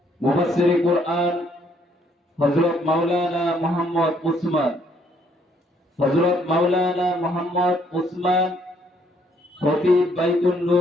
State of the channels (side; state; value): both; normal; correlation 0.67